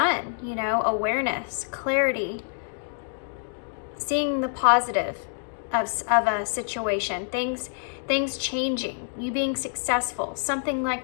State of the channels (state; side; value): silent; right; digital silence